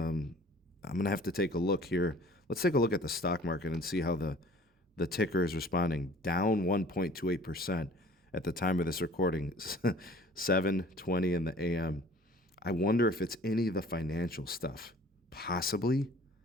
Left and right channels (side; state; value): both; normal; correlation 0.51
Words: going to have to take a look here. Let's take a look at the stock market and see how the ticker is responding. Down 1.28% at the time of this recording, 7:20 in the a.m. I wonder if it's any of the financial stuff. Possibly.